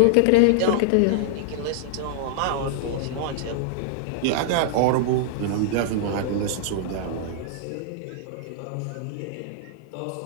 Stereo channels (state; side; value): different; both; correlation -0.01